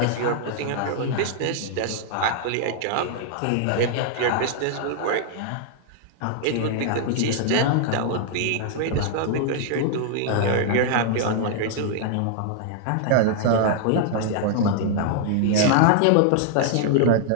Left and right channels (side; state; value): both; different; correlation 0.00